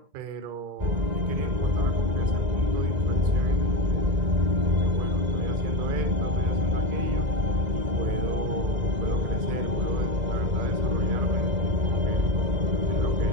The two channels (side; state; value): left; late; 2.0 ms